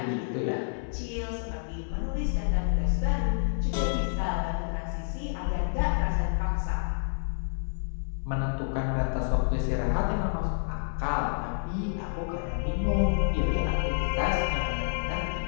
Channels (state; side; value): silent; right; digital silence